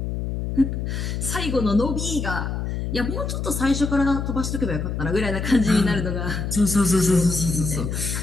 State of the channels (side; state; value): left; noise; hum, 3 dB below the sound